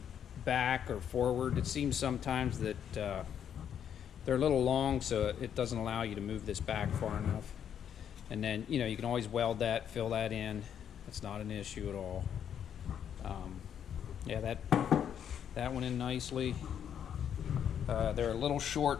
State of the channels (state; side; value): quieter; right; 8.8 dB